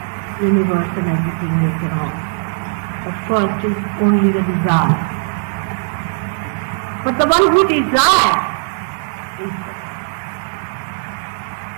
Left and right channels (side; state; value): left; silent; 67 dB below the other